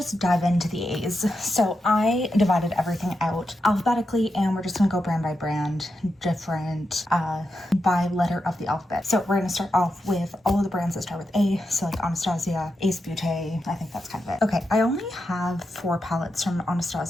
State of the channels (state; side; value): normal; both; correlation 0.87